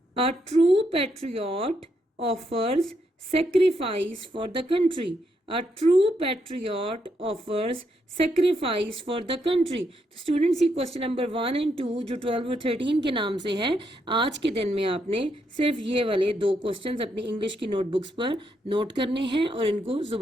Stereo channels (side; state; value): both; normal; correlation 0.78